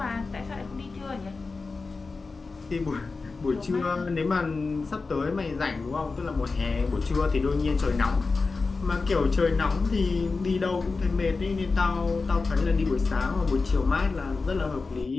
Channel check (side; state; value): right; quieter; 4.1 dB